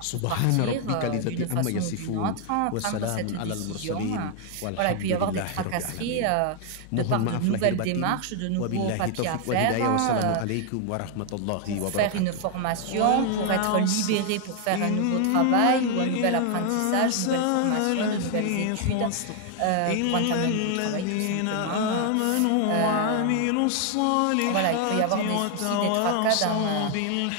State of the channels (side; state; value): both; different; correlation 0.00